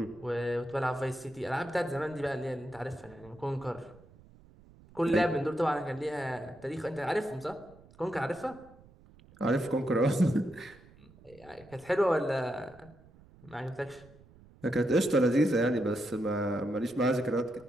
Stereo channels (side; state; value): right; noise; rumble, 24 dB below the sound